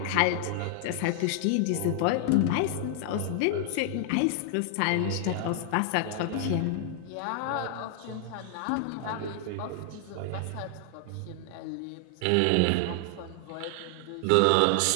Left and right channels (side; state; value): both; different; correlation 0.00